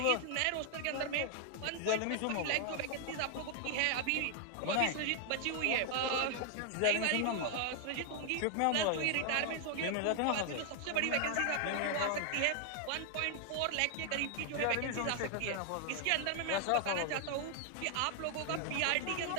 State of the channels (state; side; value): different; both; correlation 0.00